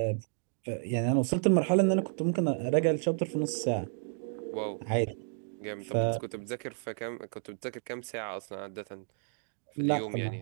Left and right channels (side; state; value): left; silent; digital silence